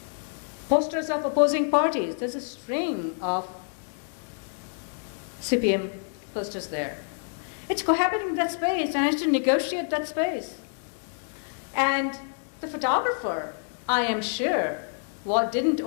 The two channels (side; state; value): right; silent; 60 dB below the other